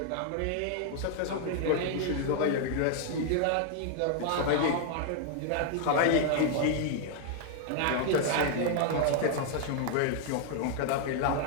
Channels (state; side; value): different; both; correlation 0.00